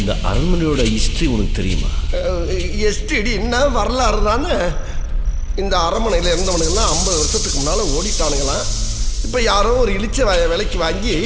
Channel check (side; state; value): both; identical; correlation 1.00